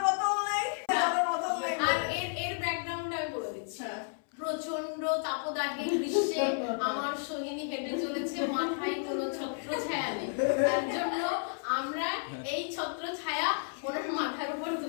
বোতল নেই জলের বোতল নেই আর এর ব্যাকগ্রাউন্ড আমি বলে দিচ্ছি প্রচন্ড তাপদাহে গ্রীষ্মে আমার সোহিনী হেঁটে চলেছে মাথায় কোনো ছত্র ছায়া নেই তার জন্য আমরা এই ছত্র ছায়া ওনার মাথার উপর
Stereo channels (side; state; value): right; silent; 56 dB below the other